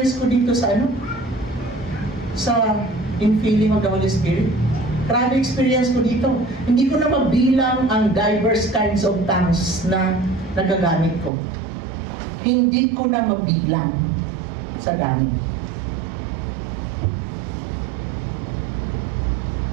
ko dito sa sa infilling of the Holy Spirit. Grabe experience ko dito. Hindi ko na mabilang ang diverse kinds of tongues na nagagamit ko. Hindi ko na mabilang sa gamit.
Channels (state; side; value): drops out; left; at 11.3 s